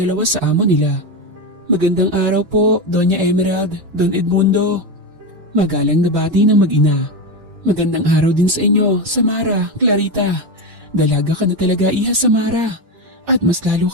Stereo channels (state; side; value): late; left; 5.8 ms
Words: sa amo nila. Magandang araw po, Doña Emerald, Don Edmundo. Magalang na bati ng mag-ina. Magandang araw din sa inyo, Samara, Clarita. Dalaga ka na talaga, Iha Samara. At mas lalo